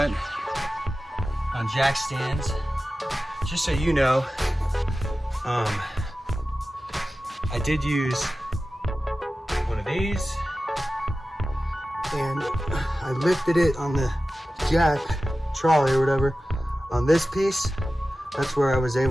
on jack stands. Just so you know, I did use one of these, and I lifted it on the jack trolley or whatever on this piece. That's where I was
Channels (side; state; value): both; normal; correlation 0.95